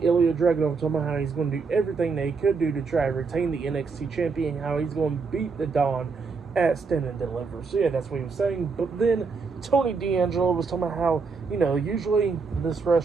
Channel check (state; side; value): quieter; left; 4.8 dB